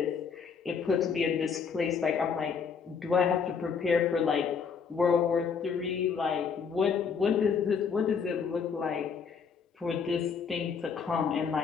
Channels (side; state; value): right; quieter; 6.2 dB